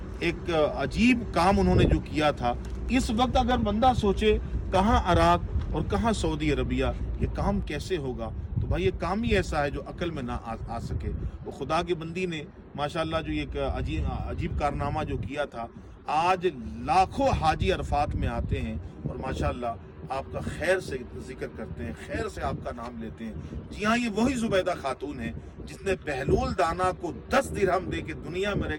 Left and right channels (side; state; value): both; identical; correlation 1.00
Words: एक अजीब काम उन्होंने जो किया था। इस वक्त अगर बंदा सोचे कहाँ इराक और कहाँ सऊदी अरबिया, ये काम कैसे होगा, तो भाई ये काम ही ऐसा है जो अकल में ना आ सके। वो खुदा के बंदी ने माशाल्लाह जो एक अजीब कारनामा जो किया था, आज लाखों हाजी अरफात में आते हैं और माशाल्लाह आपका खैर से जिक्र करते हैं, खैर से आपका नाम लेते हैं। जी हाँ, ये वही ज़ुबैदा खातून है जिसने बहलूल दाना को 10 दिरहम दे के दुनिया में